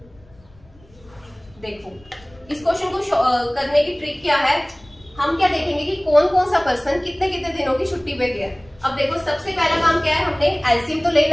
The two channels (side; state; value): left; noise; rumble, 26 dB below the sound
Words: देखो इस क्वेश्चन को करने की ट्रिक क्या है, हम क्या देखेंगे कि कौन कौन सा पर्सन कितने कितने दिनों की छुट्टी पे गया। अब देखो सबसे पहला काम क्या है, हमने एलसीएम तो